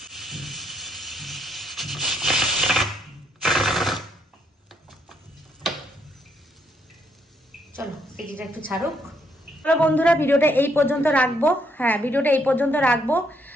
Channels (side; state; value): both; normal; correlation 0.72